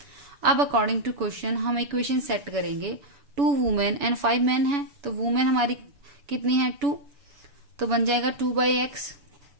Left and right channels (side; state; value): left; late; 7.0 ms